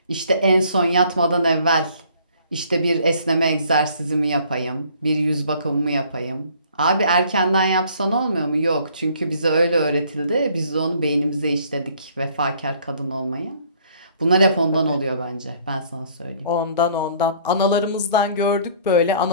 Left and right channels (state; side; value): inverted; both; correlation -0.58